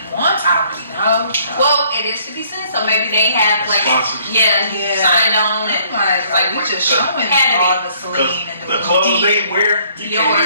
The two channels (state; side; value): inverted; both; correlation -0.61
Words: wants. I don't really know. So. Well, it is 50 cents, so maybe they have like sponsors. Signed on and like we just showing all the Celine and the clothes they wear, you can't